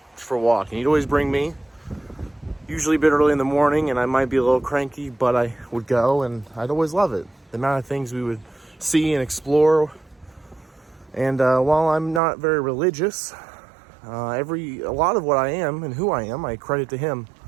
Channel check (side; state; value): left; drops out; at 12.2 s